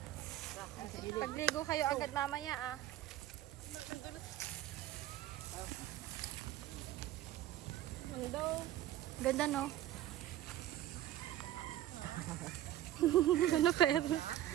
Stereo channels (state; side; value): quieter; left; 13.3 dB